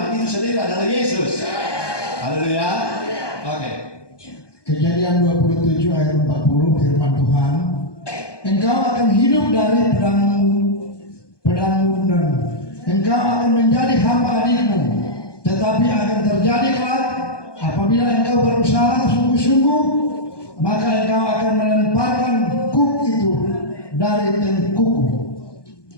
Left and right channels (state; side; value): late; right; 1.2 ms